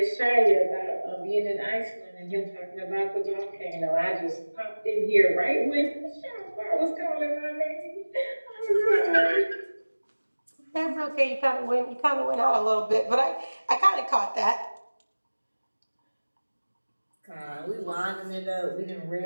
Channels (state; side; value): inverted; both; correlation -1.00